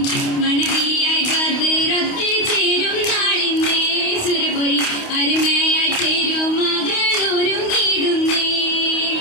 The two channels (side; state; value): right; late; 28 ms